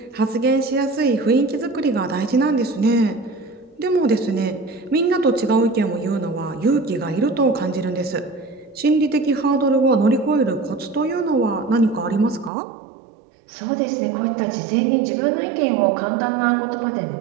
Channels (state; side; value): drops out; left; at 12.5 s